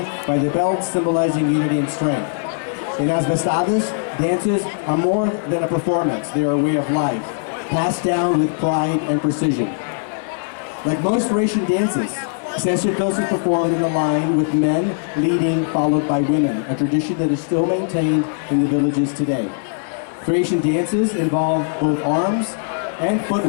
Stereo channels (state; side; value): silent; right; digital silence